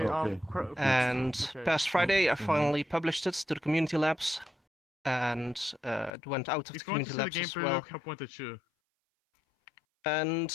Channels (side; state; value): right; drops out; at 6.1 s